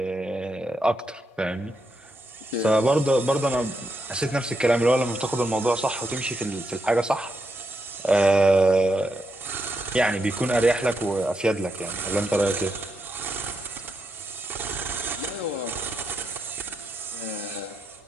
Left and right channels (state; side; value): normal; both; correlation 0.83